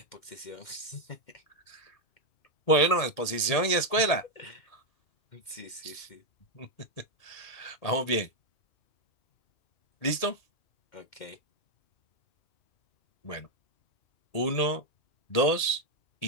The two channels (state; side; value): late; right; 1.8 ms